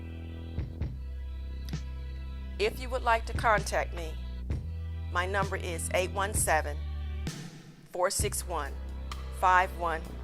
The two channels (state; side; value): identical; both; correlation 1.00